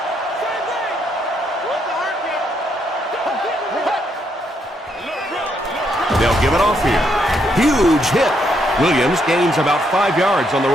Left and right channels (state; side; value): normal; both; correlation 0.75